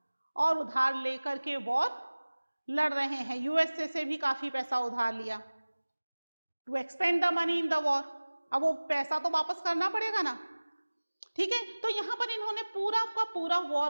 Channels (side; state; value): both; inverted; correlation -1.00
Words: और उधार लेकर के वॉर लड़ रहे हैं। यूएसए से भी काफी पैसा उधार लिया to expend the money in the war. अब वो पैसा तो वापस करना पड़ेगा ना, ठीक है? तो यहां पर इन्होंने पूरा का पूरा